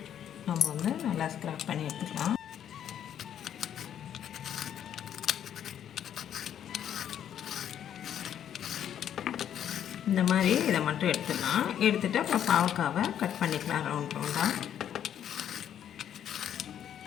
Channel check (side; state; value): right; quieter; 9.8 dB